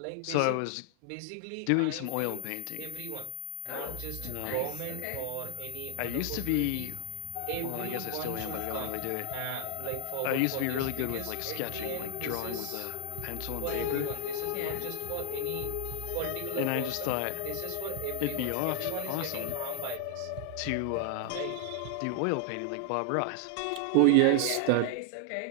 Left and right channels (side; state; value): both; different; correlation 0.00